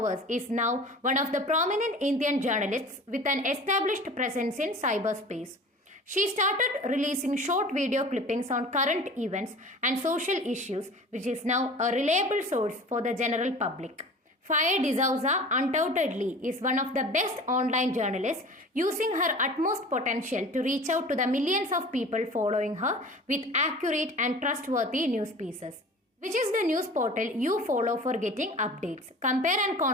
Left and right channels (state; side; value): normal; both; correlation 0.41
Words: is now one of the prominent Indian journalists with an established presence in cyberspace. She started releasing short video clippings on current events and social issues, which is now a reliable source for the general public. Faye D'Souza undoubtedly is one of the best online journalists, using her utmost potential to reach out to the millions of people following her with accurate and trustworthy news pieces. Which is the news portal you follow for getting updates? Compare and